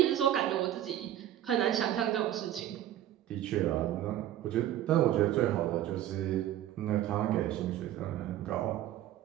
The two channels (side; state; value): left; quieter; 12.4 dB